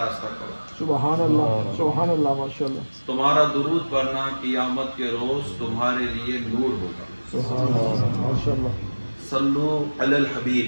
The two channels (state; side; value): inverted; both; correlation -1.00